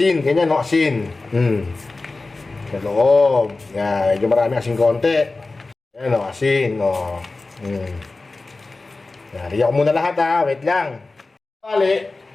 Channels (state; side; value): quieter; right; 3.4 dB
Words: ganyan, no, asin. Sa loob. Yan, medyo marami asin konti. Yan, no, asin, no. Nariyan ko muna lahat, ha. Wait lang. Bali,